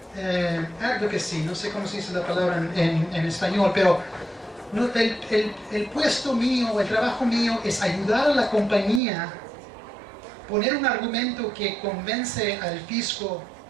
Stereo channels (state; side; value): drops out; left; at 9.0 s